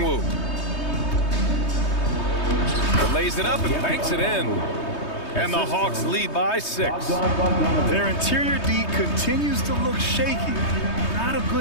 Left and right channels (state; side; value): late; right; 3.2 ms